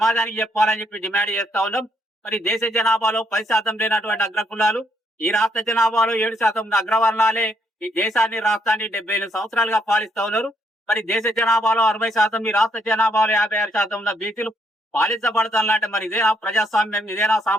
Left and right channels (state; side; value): normal; both; correlation 0.73